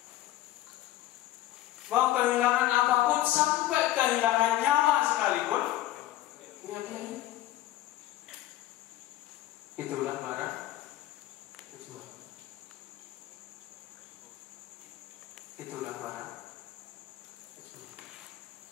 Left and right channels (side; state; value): right; quieter; 14.8 dB